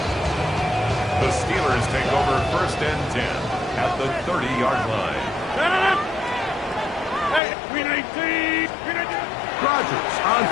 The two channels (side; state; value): right; drops out; at 7.4 s